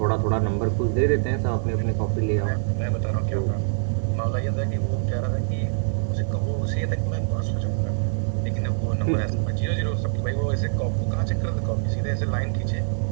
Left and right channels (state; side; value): silent; left; digital silence